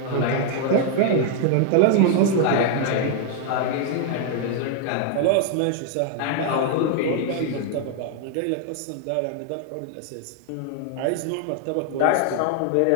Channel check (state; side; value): different; both; correlation 0.00